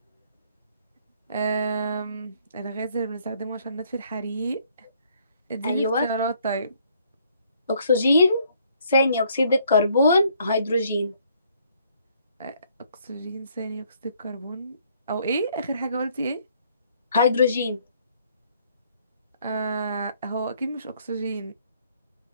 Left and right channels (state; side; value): inverted; both; correlation -0.65